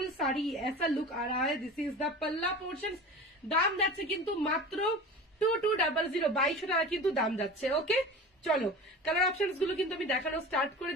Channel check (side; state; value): both; normal; correlation 0.35